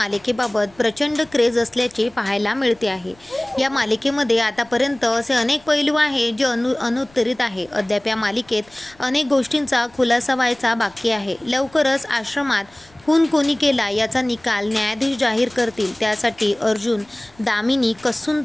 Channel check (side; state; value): left; noise; rumble, 29 dB below the sound